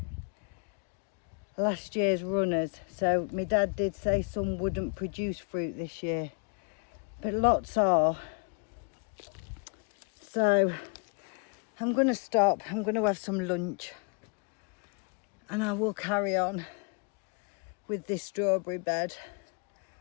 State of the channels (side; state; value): right; quieter; 35.2 dB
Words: last year's runners, so my dad did say some wouldn't produce fruit this year, but lots are. So I'm going to stop, I'm going to have some lunch, and I will carry on with this strawberry bed,